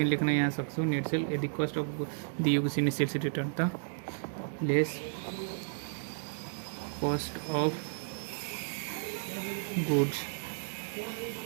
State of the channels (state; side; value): silent; left; digital silence